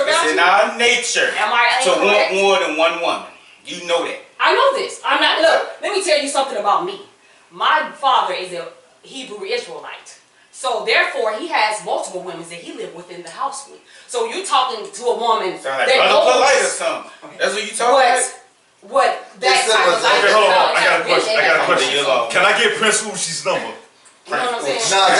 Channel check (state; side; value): identical; both; correlation 1.00